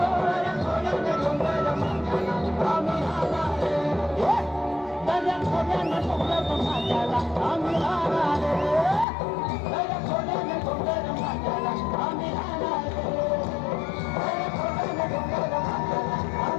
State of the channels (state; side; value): drops out; right; at 9.1 s